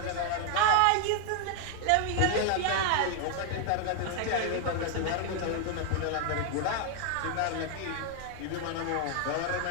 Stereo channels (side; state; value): both; different; correlation 0.00